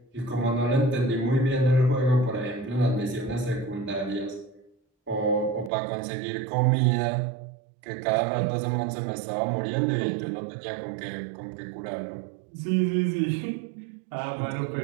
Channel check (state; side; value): drops out; left; at 5.7 s